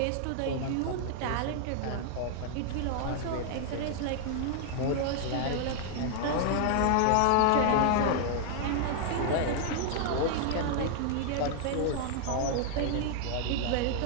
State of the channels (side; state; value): both; different; correlation 0.00